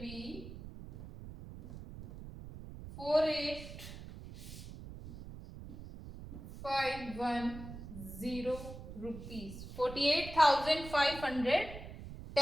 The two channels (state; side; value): noise; right; rumble, 12 dB below the sound